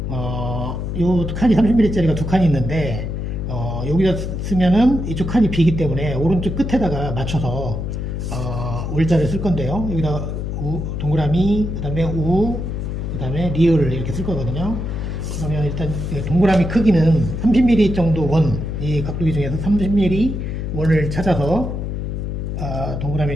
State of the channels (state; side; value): noise; left; hum, 4 dB below the sound